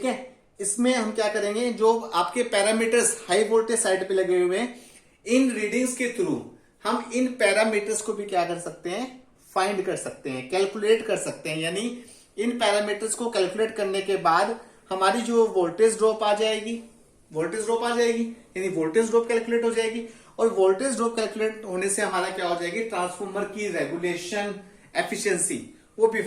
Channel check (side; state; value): both; identical; correlation 1.00